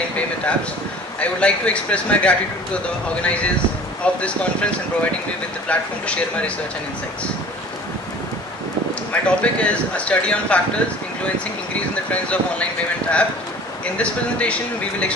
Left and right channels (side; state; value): both; normal; correlation 0.45